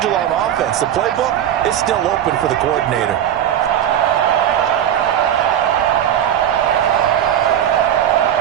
on offense. The playbook is still open for the coordinator.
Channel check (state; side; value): quieter; left; 10.5 dB